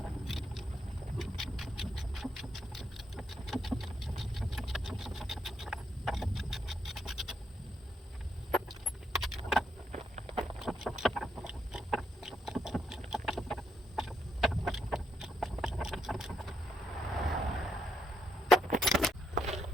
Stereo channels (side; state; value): both; normal; correlation 0.78